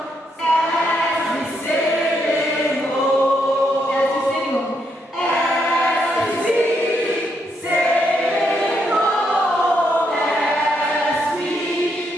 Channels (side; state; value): both; normal; correlation 0.77